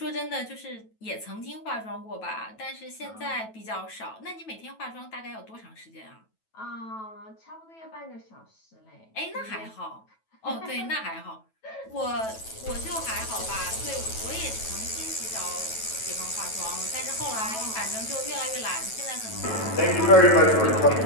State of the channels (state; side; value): late; right; 9.2 ms